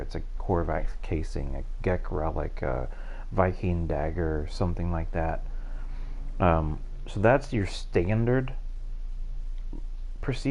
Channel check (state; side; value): identical; both; correlation 1.00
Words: a Korvax casing, a Gek relic, a Viking dagger, something like that. So that's your standard